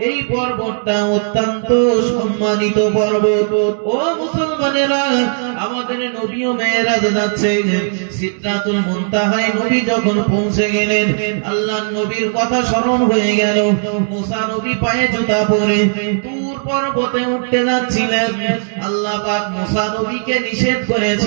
এই পর্বতটা অত্যন্ত সম্মানিত পর্বত। ও মুসলমানেরা, আমাদের নবীও মেরাজে যাচ্ছে, সিদরাতুল মুনতাহায় নবী যখন পৌঁছে গেলেন, আল্লাহর নবীর কথা স্মরণ হয়ে গেল। মুসা নবী পায়ে জুতা পরে তুর পর্বতে উঠতে যাচ্ছিলেন। আল্লাহ পাক মুসা নবীকে নিষেধ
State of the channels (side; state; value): left; silent; 68 dB below the other